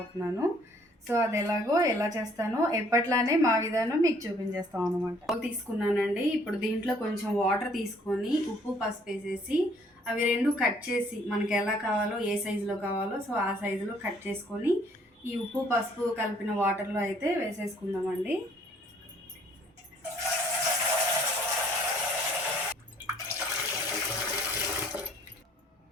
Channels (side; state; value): both; normal; correlation 0.61